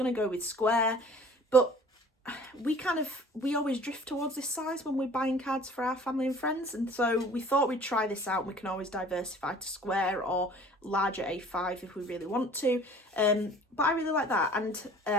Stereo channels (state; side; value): normal; both; correlation 0.48